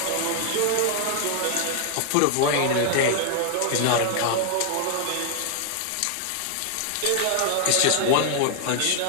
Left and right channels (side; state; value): both; different; correlation 0.00